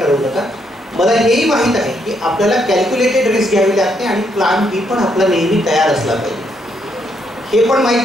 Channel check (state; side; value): normal; both; correlation 0.75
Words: नका. मला हेही माहीत आहे की आपल्याला कॅल्क्युलेटेड रिस्क घ्यावी लागते आणि प्लॅन बी पण आपला नेहमी तयार असला पाहिजे. हे पण